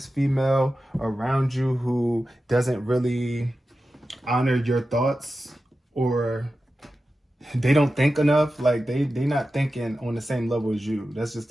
female around you who doesn't really honor your thoughts, or they don't think enough. Like they not thinking on the same level as you. That's just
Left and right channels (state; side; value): normal; both; correlation 0.93